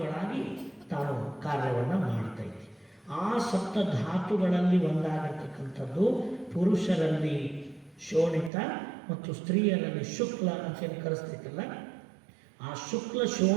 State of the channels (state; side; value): drops out; left; at 8.5 s